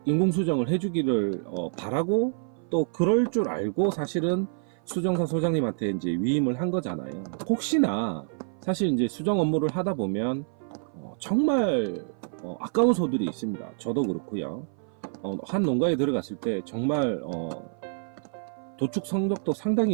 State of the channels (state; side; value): silent; left; 56 dB below the other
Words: 인공 수정을 해주기를 바라고 또 그럴 줄 알고 사실은 수정사 소장님한테 이제 위임을 한 거잖아요. 혹시나 사실 이제 수정 업무를 하다 보면 정말 아까운 소들이 있습니다. 저도 그렇고요. 한 농가에 들어갔을 때 정말 도축 성적도